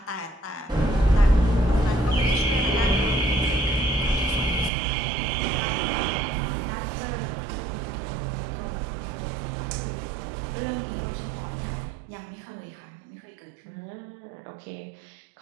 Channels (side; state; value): left; drops out; at 4.7 s